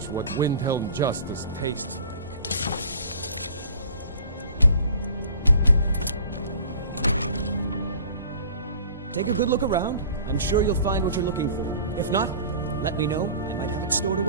what Windhelm justice tastes like. Take a good look around. I'm sure you'll find what you're looking for. If not, let me know. I might have it stored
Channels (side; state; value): both; inverted; correlation -0.45